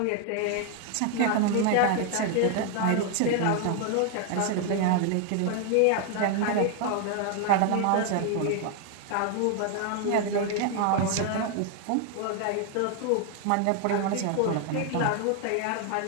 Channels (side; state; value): both; different; correlation 0.00